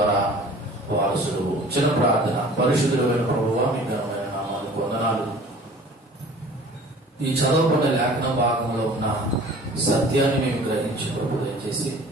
వారసుడు. చిన్న ప్రార్థన. పరిశుద్ధుడైన ప్రభువా, మీ ఘనమైన నామానికి వందనాలు. ఈ చదవబడిన లేఖన భాగంలో ఉన్న సత్యాన్ని మేము గ్రహించి ప్రభు దయచేసి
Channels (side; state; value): both; normal; correlation 0.47